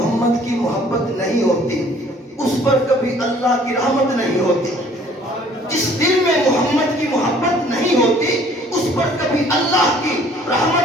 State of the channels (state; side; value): normal; both; correlation 0.56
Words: کی محبت نہیں ہوتی اس پر کبھی اللہ کی رحمت نہیں ہوتی، جس دل میں محمد کی محبت نہیں ہوتی اس پر کبھی اللہ کی